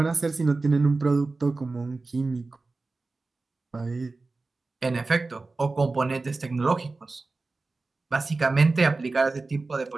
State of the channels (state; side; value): quieter; left; 3.6 dB